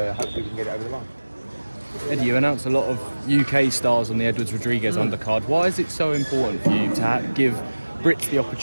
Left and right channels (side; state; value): both; inverted; correlation -1.00